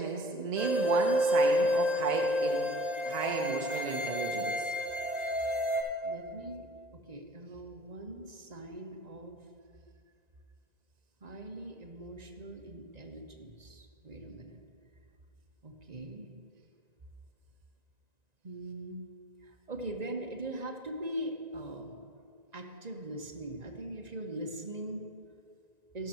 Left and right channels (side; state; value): left; late; 1.9 ms